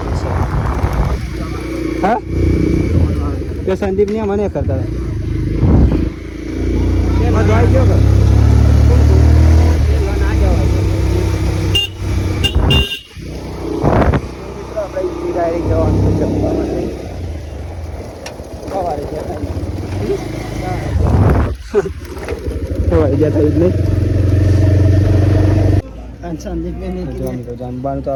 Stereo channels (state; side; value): identical; both; correlation 1.00